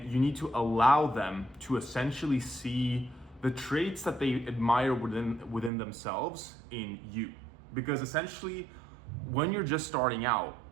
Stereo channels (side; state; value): left; drops out; at 5.7 s